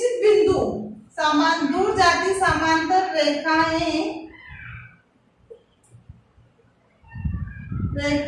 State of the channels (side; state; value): both; identical; correlation 1.00